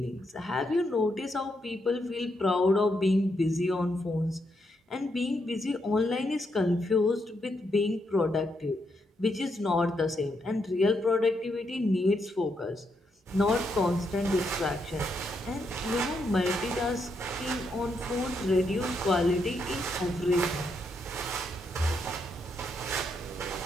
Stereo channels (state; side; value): normal; both; correlation 0.79